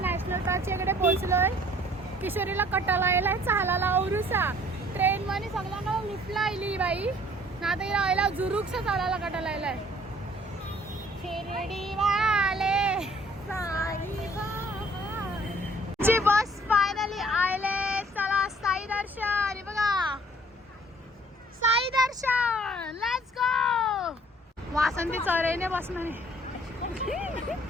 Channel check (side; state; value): both; normal; correlation 0.57